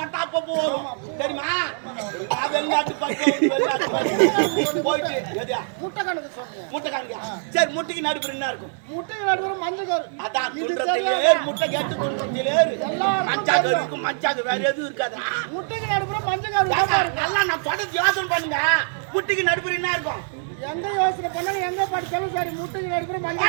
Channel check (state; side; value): silent; left; digital silence